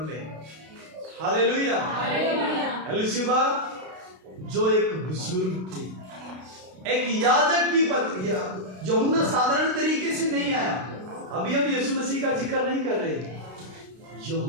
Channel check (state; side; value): late; left; 32 ms